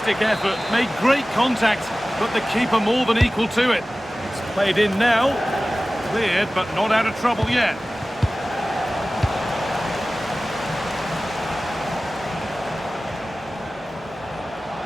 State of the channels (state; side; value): normal; both; correlation 0.97